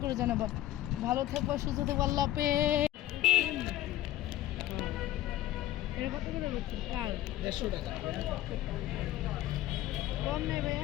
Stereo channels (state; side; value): quieter; right; 14.3 dB